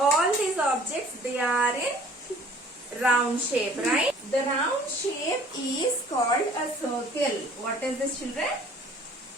these objects, they are in round shape, right? The round shape is called a circle. What is this children?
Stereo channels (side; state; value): both; normal; correlation 0.53